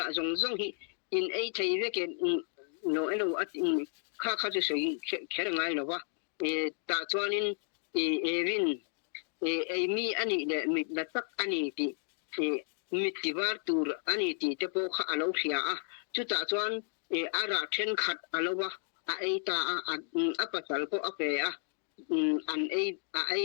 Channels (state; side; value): silent; right; 56 dB below the other